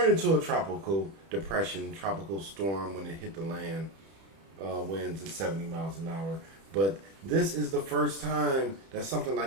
into a tropical depression, tropical storm when it hit the land. Winds at 70 miles an hour. But this is the first time that something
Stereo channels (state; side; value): late; left; 31 ms